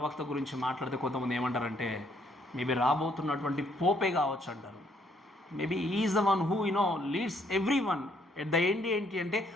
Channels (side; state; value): both; normal; correlation 0.68